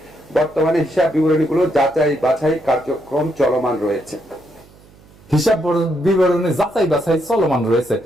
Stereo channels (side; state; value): right; noise; hum, 26 dB below the sound